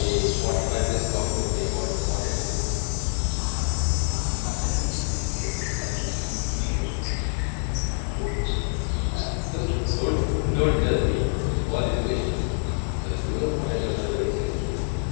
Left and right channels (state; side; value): silent; right; 56 dB below the other